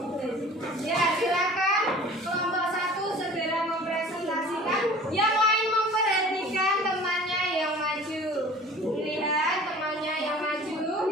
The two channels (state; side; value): normal; both; correlation 0.45